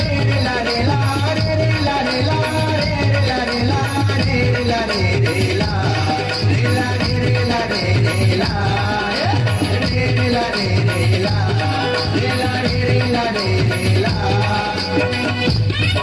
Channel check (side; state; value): both; identical; correlation 1.00